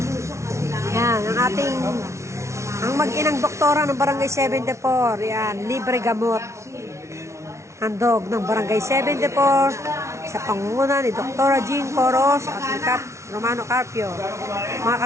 Yan, ang mag-inang doktora ng Barangay 74. Yan, libre gamot. Handog ng Barangay 74 sa pangunguna ni Doktora Jean Coros at ni Cap Romano Carpio. Mga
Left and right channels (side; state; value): left; late; 0.13 ms